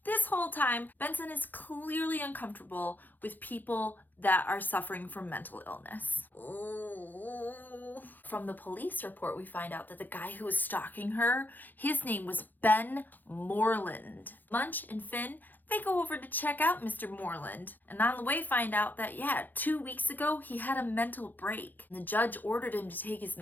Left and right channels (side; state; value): right; late; 0.086 ms